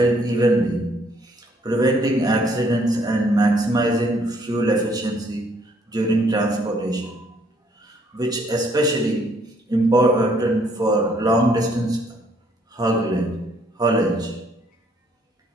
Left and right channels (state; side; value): normal; both; correlation 0.66